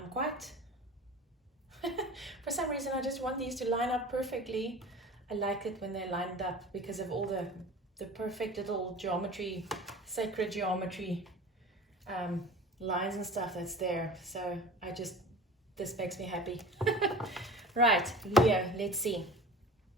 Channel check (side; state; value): both; normal; correlation 0.39